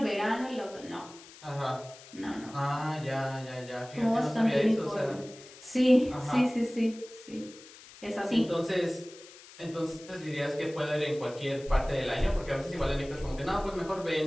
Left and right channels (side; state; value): left; noise; hiss, 19 dB below the sound